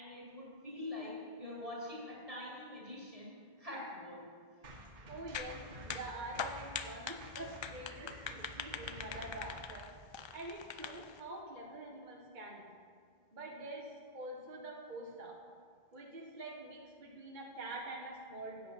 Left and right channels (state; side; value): late; left; 1.3 ms